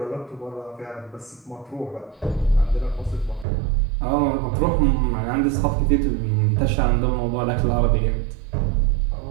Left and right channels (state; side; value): drops out; left; at 3.5 s